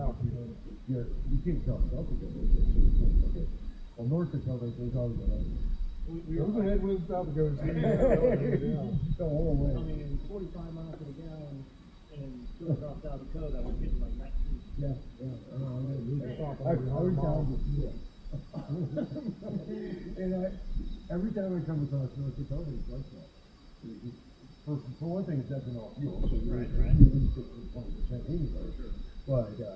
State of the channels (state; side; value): identical; both; correlation 1.00